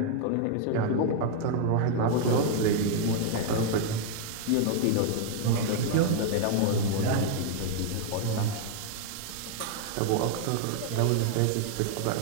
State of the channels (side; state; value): both; different; correlation 0.00